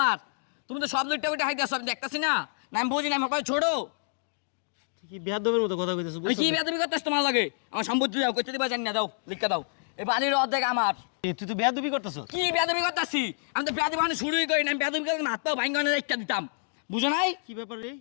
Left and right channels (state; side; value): silent; right; digital silence